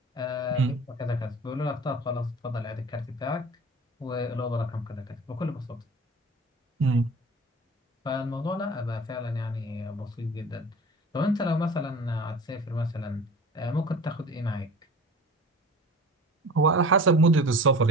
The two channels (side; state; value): both; normal; correlation 0.39